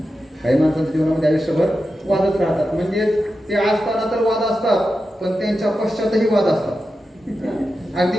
काही माणसांच्या जीवनामध्ये आयुष्यभर वादच राहतात. म्हणजे ते असताना तर वाद असतात, पण त्यांच्या पश्चातही वाद असतात.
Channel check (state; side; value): normal; both; correlation 0.90